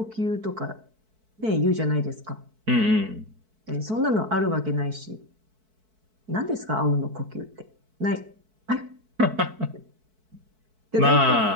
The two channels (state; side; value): late; left; 4.6 ms